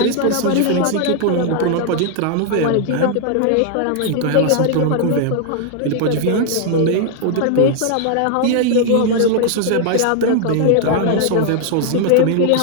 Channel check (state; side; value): different; both; correlation 0.00